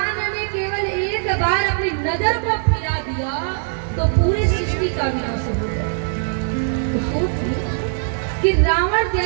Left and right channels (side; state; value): left; silent; 65 dB below the other